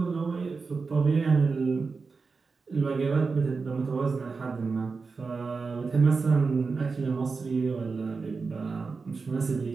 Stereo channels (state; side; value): quieter; left; 4.6 dB